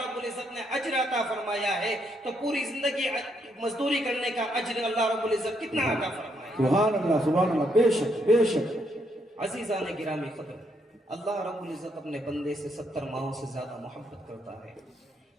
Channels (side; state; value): both; normal; correlation 0.75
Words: العزت نے اجر عطا فرمایا ہے تو پوری زندگی مزدوری کرنے کا اجر اللہ رب العزت کتنا عطا فرمایا۔ سبحان اللہ بے شک بے شک۔ عزیزان گرامی قدر، اللہ رب العزت اپنے بندے سے 70 ماہوں سے زیادہ محبت کرتا ہے۔